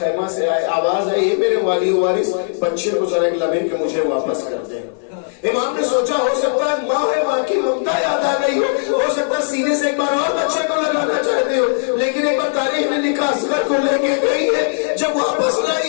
خیمہ سے آواز آئی میرے والی وارث بچے کو ذرا ایک لمحے کے مجھے واپس کر دیں۔ امام نے سوچا ہو سکتا ہے ماں ہے، ماں کی ممتا یاد آ گئی ہو سکتا ہے سینے سے ایک بار اور بچے کو لگانا چاہتے ہو، لیکن ایک بار تاریخ نے لکھا اصغر کو لے کے گئی ہے، جب واپس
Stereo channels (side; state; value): right; silent; 60 dB below the other